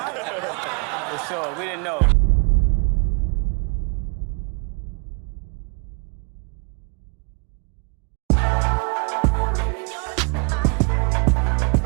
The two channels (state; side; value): quieter; left; 35.0 dB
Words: For sure, we didn't know.